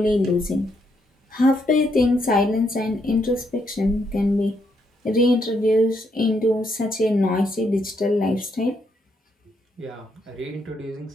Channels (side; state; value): both; normal; correlation 0.76